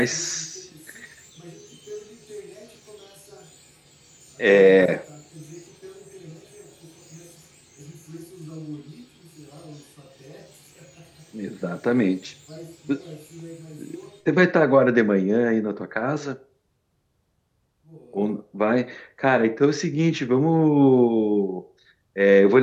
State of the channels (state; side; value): identical; both; correlation 1.00